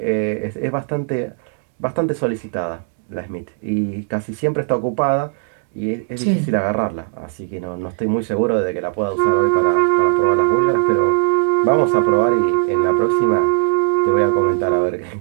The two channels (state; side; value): silent; left; 65 dB below the other